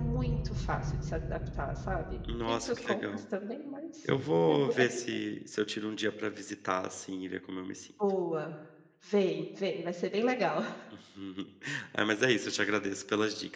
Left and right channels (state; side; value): identical; both; correlation 1.00